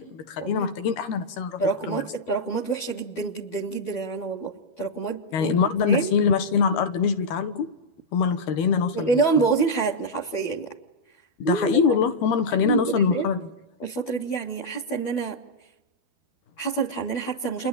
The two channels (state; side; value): late; right; 12 ms